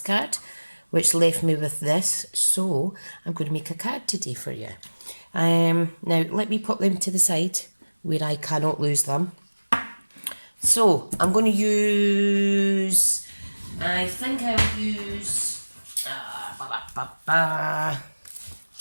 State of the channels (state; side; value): inverted; both; correlation -1.00